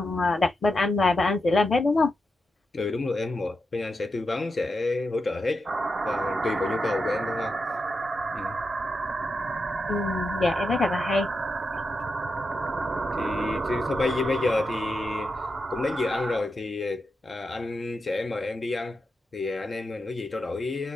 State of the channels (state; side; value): normal; both; correlation 0.87